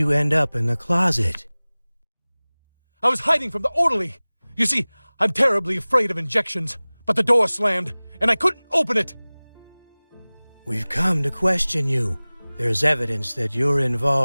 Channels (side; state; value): both; inverted; correlation -1.00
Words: end up in the closet? I was hiding from the orderly. You see, I'm terribly afraid of injections, but the door slammed, and I couldn't open it. We've come to question you. There's evidence that you're